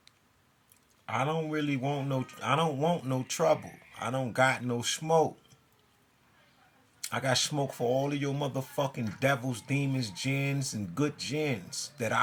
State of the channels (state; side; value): identical; both; correlation 1.00